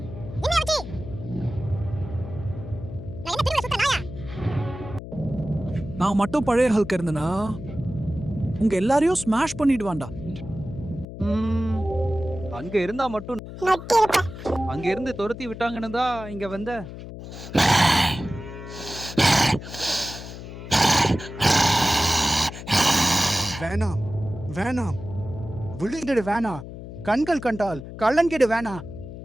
என்ன ஆச்சு? நான் என்ன திரும்ப சுத்த நாயா? நான் மட்டும் பழைய ஹல்க் இருந்தனா உங்க எல்லாரையும் ஸ்மாஷ் பண்ணிடுவான்டா. அங்க இருந்தா மட்டும் அங்க இருந்து துரத்தி விட்டாங்கன்னு தான் இங்க வந்த. வேணாம் வேணாம், விழுங்கிடு வேணாம், கண்கள் கண்டால் கள்ளன்கிடு வேணாம்.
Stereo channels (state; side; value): noise; left; hum, 11 dB below the sound